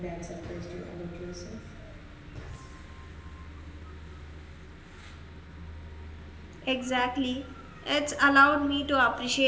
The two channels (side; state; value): both; identical; correlation 1.00